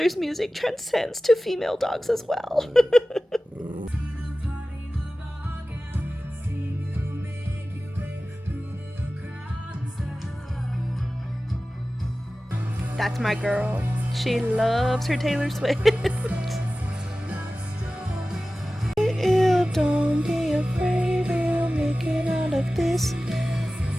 music transcends to female dogs as well. That's my girl. She loves her Taylor Swift. Don't be afraid, we'll make it out of this.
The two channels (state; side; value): normal; both; correlation 0.96